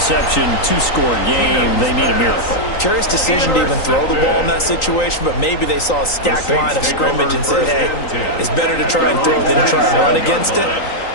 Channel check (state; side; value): late; right; 3.9 ms